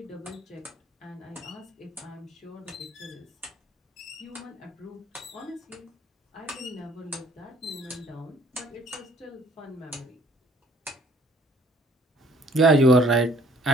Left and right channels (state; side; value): normal; both; correlation 0.60